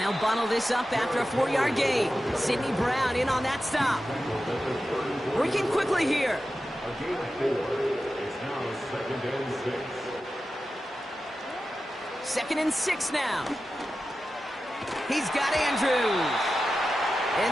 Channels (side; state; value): both; normal; correlation 0.92